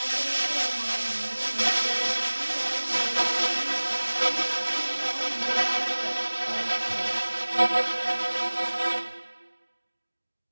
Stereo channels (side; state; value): both; inverted; correlation -1.00